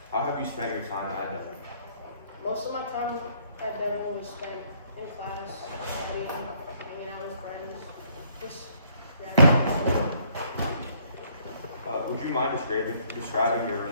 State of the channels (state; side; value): inverted; both; correlation -0.65